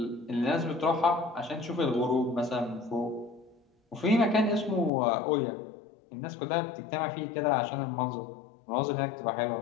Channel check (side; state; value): right; drops out; at 4.9 s